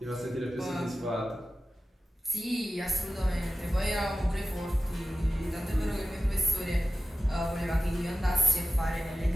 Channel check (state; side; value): normal; both; correlation 0.93